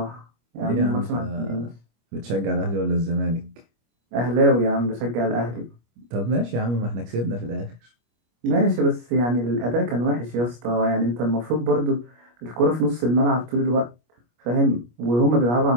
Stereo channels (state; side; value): late; left; 25 ms